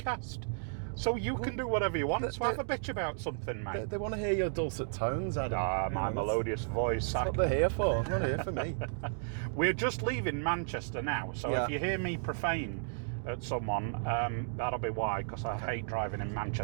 So you can do whatever you want. So have a bitch about something, mate. They want to hear your dulcet tones, Adam. My melodious voice. That's what they're here for. They're not here for me. We're just leaving Manchester now, so if you hear me profane at someone, that'll be why, because I hate driving in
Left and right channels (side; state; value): left; silent; digital silence